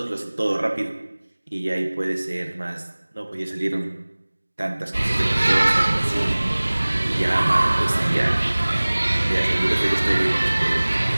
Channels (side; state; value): both; inverted; correlation -1.00